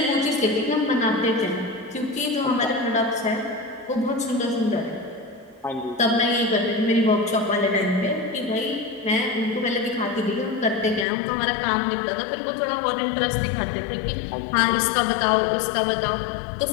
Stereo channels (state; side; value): drops out; right; at 11.1 s